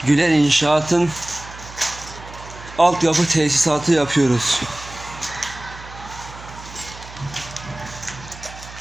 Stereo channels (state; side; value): noise; right; hum, 16 dB below the sound